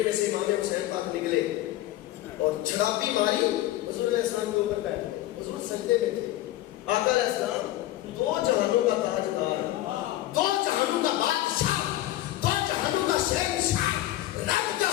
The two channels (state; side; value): quieter; right; 15.2 dB